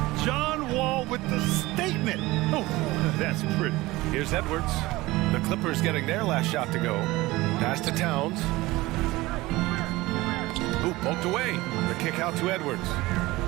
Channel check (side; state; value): left; quieter; 19.8 dB